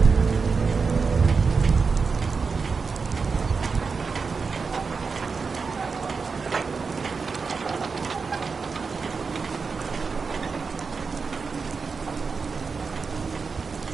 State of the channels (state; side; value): quieter; left; 4.9 dB